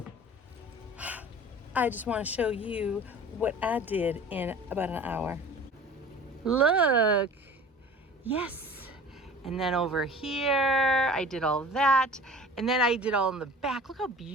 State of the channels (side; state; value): both; normal; correlation 0.42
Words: I just want to show you what I did in about an hour. Look, yes. And then over here, I did all that. And then I did all in the back. Look how